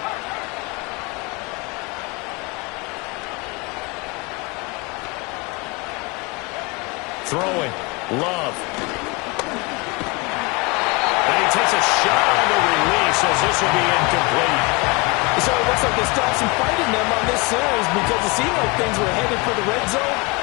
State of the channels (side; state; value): right; quieter; 27.8 dB